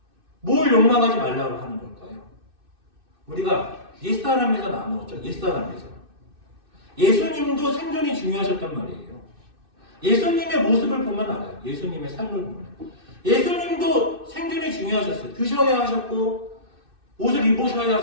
뭘 욕망하지 말라고 하는 걸까요? 우리가 옛사람에서 나누었죠. 옛사람에서. 예수님도 생존이 중요하셨단 말이에요. 예수님의 모습을 보면 알아요. 예수님의 삶을 보면. 예수님도 생존이 중요하셨어요. 드셔야 하셨고, 옷을 입으셔야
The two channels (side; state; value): left; late; 2.6 ms